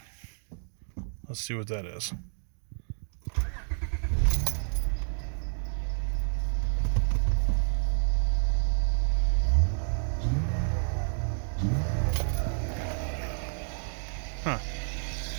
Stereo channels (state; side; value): silent; left; digital silence